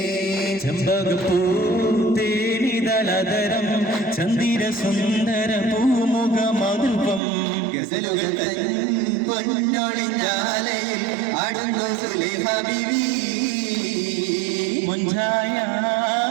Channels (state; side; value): drops out; left; at 7.2 s